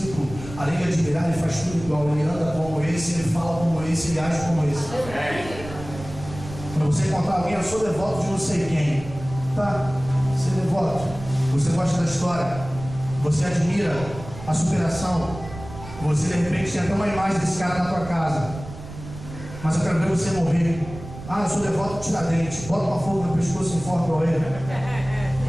além de admirar, ele faz tudo igual. Ele anda como esse, ele fala como esse, ele age como esse. Para você encontrar alguém, eu sou devoto de não sei quem. Tá, ser devoto. Você gosta da história, você admira a superação, você de repente tem até uma imagem desse cara na tua casa, mas eu quero ver você morrer. Ah, eu sou devoto de Tiradentes, bota uma fogo no pescoço e enforca o ele.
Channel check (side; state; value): right; noise; rumble, 13 dB below the sound